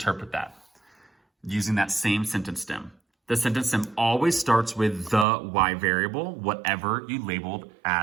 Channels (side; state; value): left; drops out; at 5.2 s